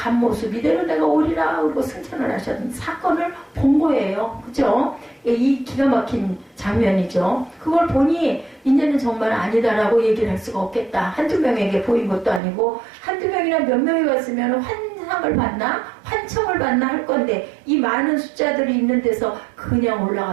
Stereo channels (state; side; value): drops out; left; at 12.4 s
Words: 모습 이대로 내가 오리라 그러고 승천을 하셨던 사건을 본 거예요. 그죠? 이 기가 막힌 장면이죠. 그걸 보니 이제는 정말 아니다라고 얘기를 할 수가 없겠다. 한두 명에게 보인 것도 아니고, 한두 명이나 몇 명이 왔으면 환상을 받나 환청을 받나 할 건데, 이 많은 숫자들이 있는 데서 그냥